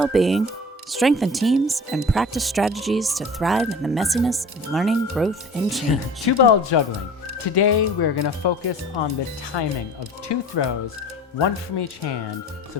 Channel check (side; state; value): both; normal; correlation 0.41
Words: strengthen teams, and practice strategies to thrive in the messiness of learning, growth, and change. 2-ball juggling. Today, we're going to focus on the timing of 2 throws, 1 from each hand, so